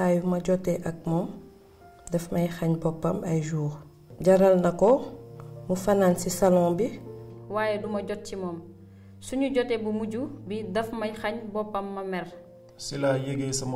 yu ma jotee ak moom daf may xañ boppam ay jours. Jaral na ko mu fanaan ci salon bi. waaye duma jot ci moom suñu jotee bu mujj bi daf may xañ boppam ma mer. si laa yégee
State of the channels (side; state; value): both; identical; correlation 1.00